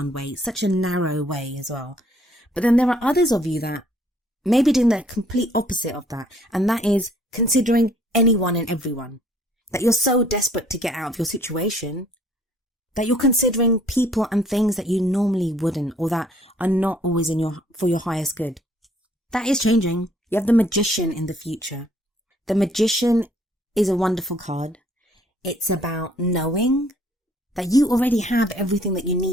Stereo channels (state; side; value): normal; both; correlation 0.61